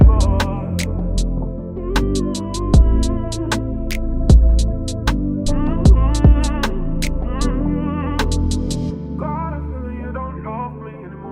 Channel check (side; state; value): both; identical; correlation 1.00